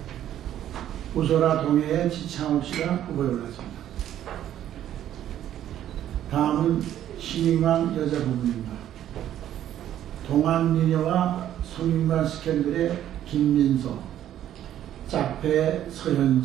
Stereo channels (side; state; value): left; quieter; 11.5 dB